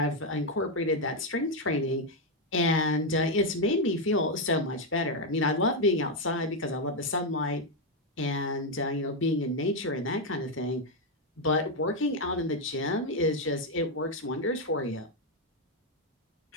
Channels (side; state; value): both; normal; correlation 0.03